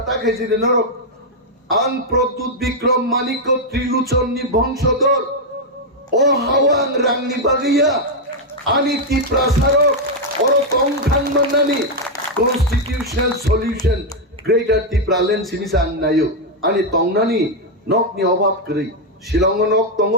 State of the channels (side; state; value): both; normal; correlation -0.01